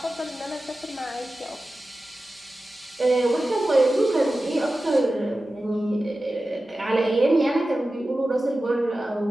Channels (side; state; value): both; normal; correlation 0.94